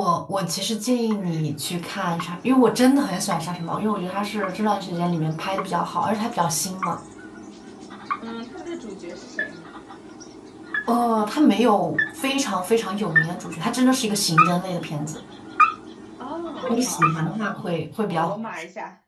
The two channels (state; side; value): identical; both; correlation 1.00